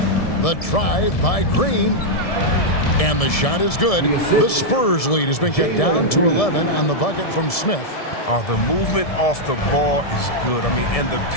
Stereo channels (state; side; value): late; right; 1.7 ms